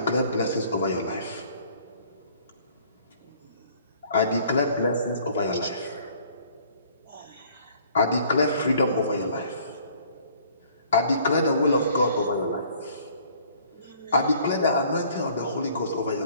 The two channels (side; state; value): both; inverted; correlation -0.56